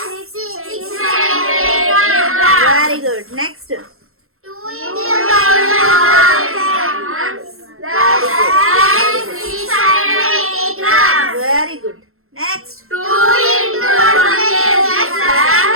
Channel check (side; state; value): left; late; 0.62 ms